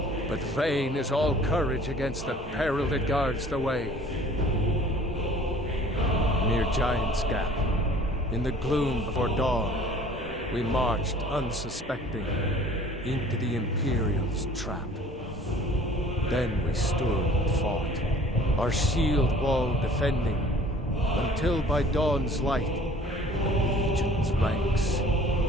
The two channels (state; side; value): normal; both; correlation 0.50